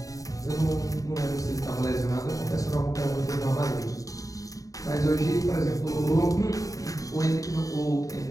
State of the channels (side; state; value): right; late; 0.16 ms